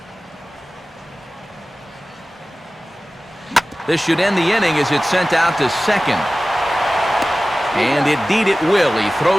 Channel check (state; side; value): normal; both; correlation 0.97